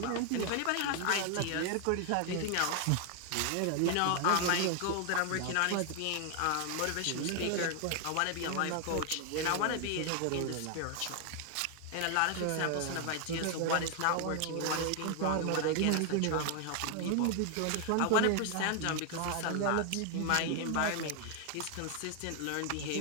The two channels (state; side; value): different; both; correlation 0.00